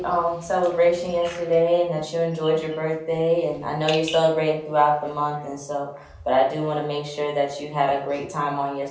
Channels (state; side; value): identical; both; correlation 1.00